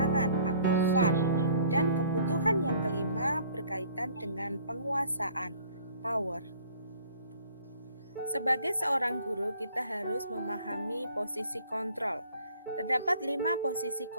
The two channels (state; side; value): inverted; both; correlation -0.55